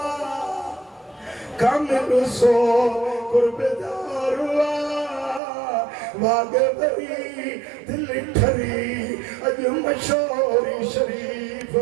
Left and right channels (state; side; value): drops out; left; at 5.4 s